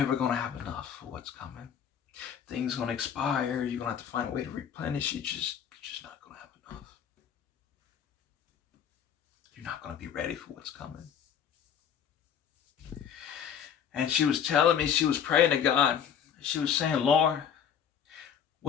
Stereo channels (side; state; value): right; quieter; 8.2 dB